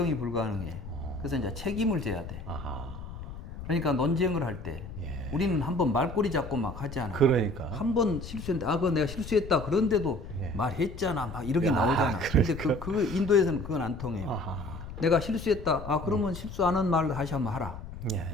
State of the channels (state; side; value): noise; left; rumble, 11 dB below the sound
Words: 불가능해. 그래서 이제 책임을 져야 돼. 그러니까 논쟁을 할 때 우리는 한번 말꼬리 잡고 막 하지 않아. 그러니까. 한번 실수했는데 그거 내가 실수했다. 그런데도 말했잖아. 막 이렇게 나오잖아. 근데 그 인도에서는 그건 안 통해요. 내가 실수했다. 그러면 실수 안 한 말 다시 한번 하라.